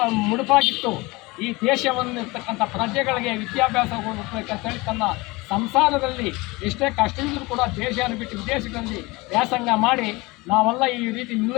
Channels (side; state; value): right; quieter; 23.3 dB